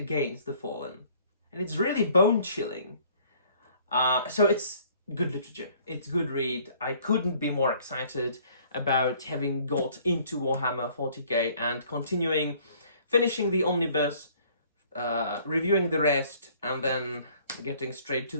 the Fallen. And it's really bone-chilling. So it's good literature. It's good read. I couldn't be more excited about having got into Warhammer 40k and finishing the omnibus, reviewing the rest, and then getting straight to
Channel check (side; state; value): both; inverted; correlation -0.57